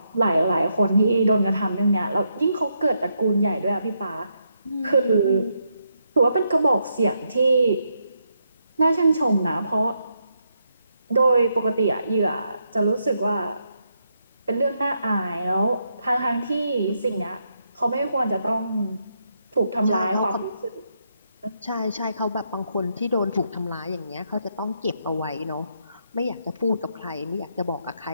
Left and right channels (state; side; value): inverted; both; correlation -0.79